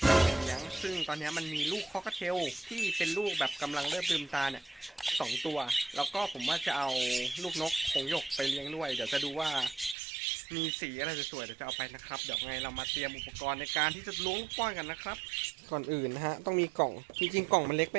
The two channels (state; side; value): drops out; left; at 10.0 s